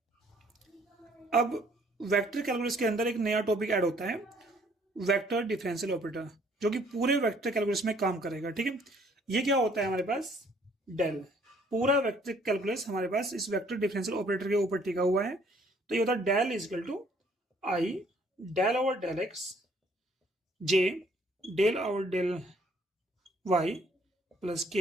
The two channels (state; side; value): normal; both; correlation 0.62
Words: अब वेक्टर कैलकुलस के अंदर एक नया टॉपिक ऐड होता है, वेक्टर डिफरेंशियल ऑपरेटर, जो कि पूरे वेक्टर कैलकुलस में काम करेगा। ठीक है, ये क्या होता है हमारे पास, डेल। पूरा वेक्टर कैलकुलस हमारे पास इस वेक्टर डिफरेंशियल ऑपरेटर के ऊपर टिका हुआ है। तो ये होता है del is equal to I del over del X J del over del Y plus